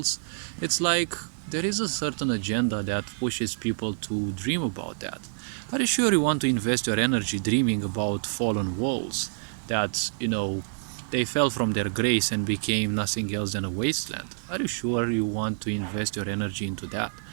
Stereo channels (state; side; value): silent; left; digital silence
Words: It's like there is a certain agenda that pushes people to dream about that. Are you sure you want to invest your energy dreaming about fallen worlds that, they fell from their grace and became nothing else than a wasteland? Are you sure you want to invest your energy into that?